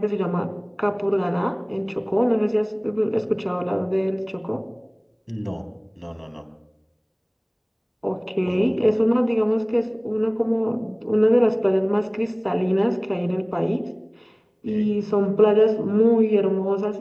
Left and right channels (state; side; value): identical; both; correlation 1.00